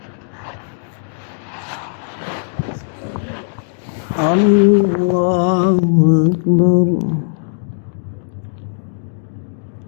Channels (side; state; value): right; silent; digital silence